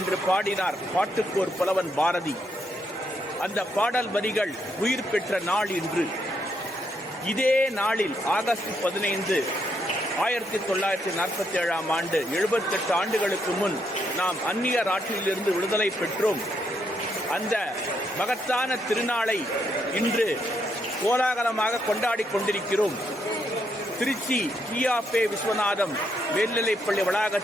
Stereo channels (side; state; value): both; normal; correlation 0.77